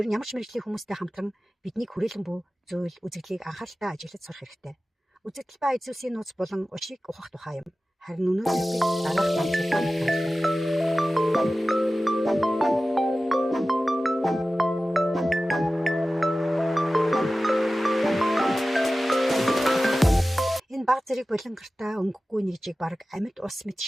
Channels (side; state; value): both; normal; correlation 0.95